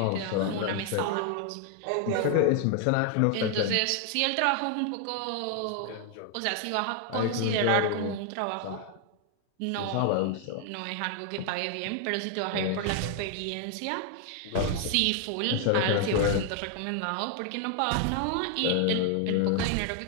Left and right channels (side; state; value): both; different; correlation 0.00